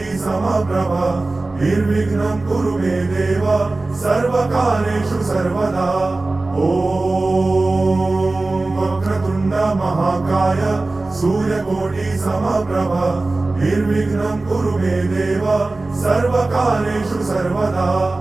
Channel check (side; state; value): left; quieter; 3.2 dB